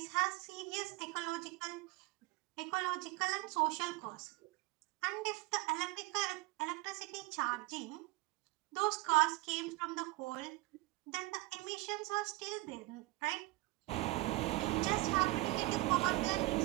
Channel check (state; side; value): quieter; left; 20.8 dB